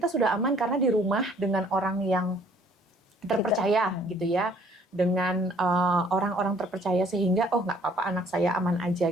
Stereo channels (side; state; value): both; normal; correlation 0.59